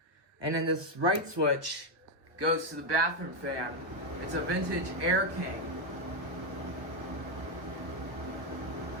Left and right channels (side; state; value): left; late; 1.0 ms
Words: And then this right switch goes to the bathroom fan. It's a vintage Air King.